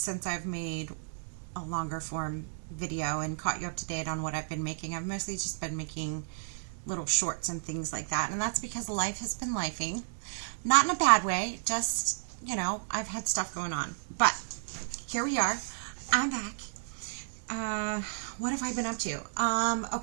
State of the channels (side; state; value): left; silent; digital silence